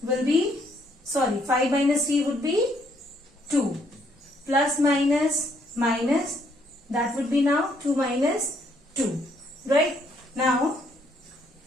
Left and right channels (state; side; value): normal; both; correlation 0.70